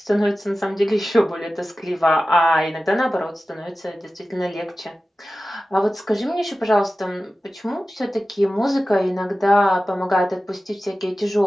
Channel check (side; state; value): both; normal; correlation 0.95